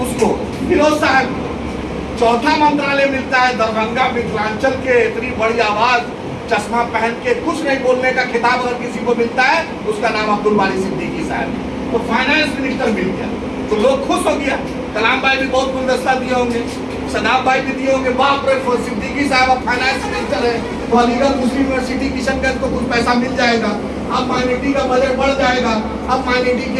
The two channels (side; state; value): both; identical; correlation 1.00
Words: उसको फिरोज साहब। चौथा मंत्रालय मिलता है दरभंगा मिथिलांचल के, इतनी बड़ी आवाज, चश्मा पहन के कुछ नहीं बोलने का खिताब अगर किसी को मिलता है उसका नाम अब्दुल बारी सिद्दीकी साहब। तो फाइनेंस मिनिस्टर मिल गया तो लोग खुश हो गया। कलाम भाई भी बहुत गुलदस्ता दिए होंगे, सदाब भाई भी दिए होंगे, बाप रे सिद्दीकी साहब अब फाइनेंस मिनिस्टर है तो अलीगढ़ मुस्लिम यूनिवर्सिटी किशनगंज को कुछ पैसा मिल जाएगा। अब माइनॉरिटी का बजट बढ़ जाएगा। अब माइनॉरिटी